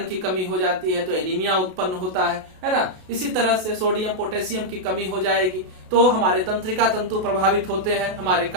की कमी हो जाती है तो एनीमिया उत्पन्न होता है ना। इसी तरह से सोडियम पोटेशियम की कमी हो जाएगी तो हमारे तंत्रिका तंतु प्रभावित होते हैं, हमारे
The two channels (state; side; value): late; left; 32 ms